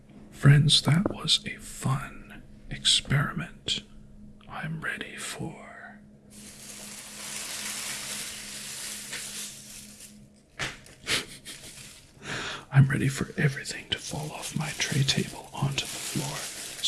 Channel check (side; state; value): both; identical; correlation 1.00